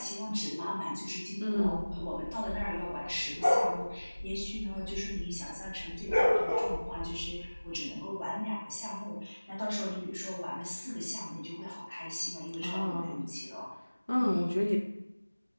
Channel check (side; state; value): both; inverted; correlation -1.00